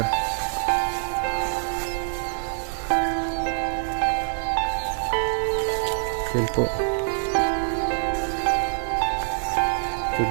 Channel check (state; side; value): silent; left; 62 dB below the other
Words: Yan po. Medyo